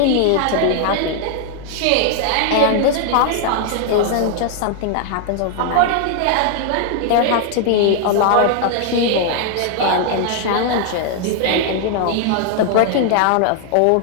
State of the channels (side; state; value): both; different; correlation 0.00